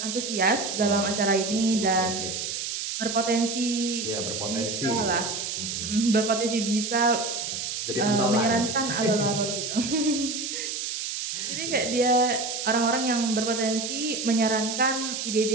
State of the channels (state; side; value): noise; right; hiss, 4 dB below the sound